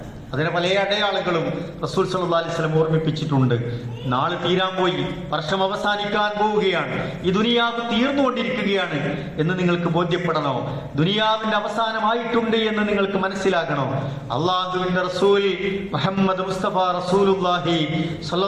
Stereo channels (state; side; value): identical; both; correlation 1.00